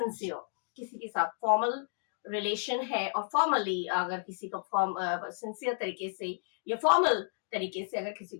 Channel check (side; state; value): right; silent; digital silence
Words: किसी के साथ फॉर्मल रिलेशन है और फॉर्मली अगर किसी को सिंसियर तरीके से या फॉर्मल तरीके से अगर किसी